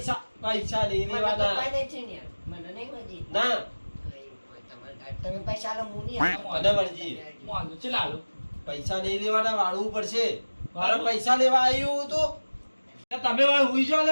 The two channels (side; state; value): both; inverted; correlation -1.00